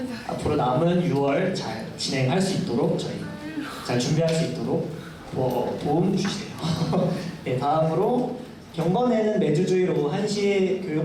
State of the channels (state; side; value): identical; both; correlation 1.00